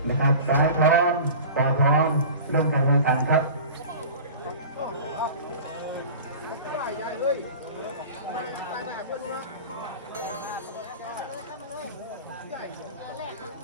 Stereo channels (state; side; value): inverted; both; correlation -0.36